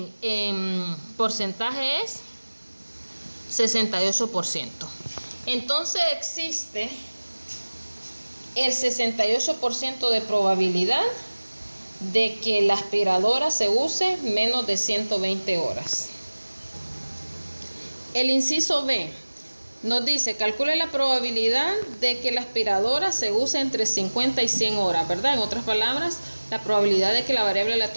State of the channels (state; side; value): inverted; both; correlation -1.00